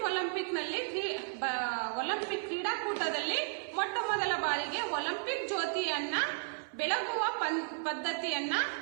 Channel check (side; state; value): left; silent; 55 dB below the other